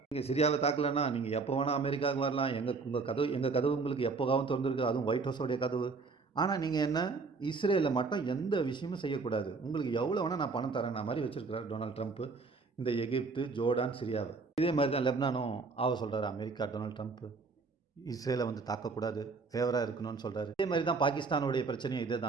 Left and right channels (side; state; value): left; quieter; 4.4 dB